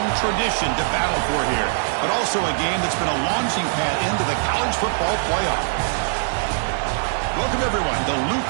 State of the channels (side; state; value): left; silent; digital silence